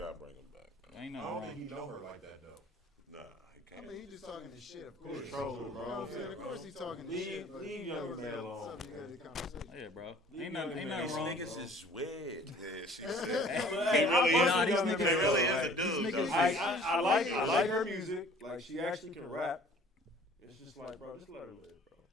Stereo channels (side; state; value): both; normal; correlation 0.51